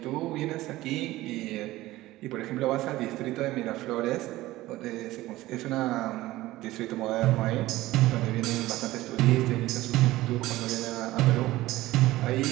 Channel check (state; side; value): quieter; left; 17.2 dB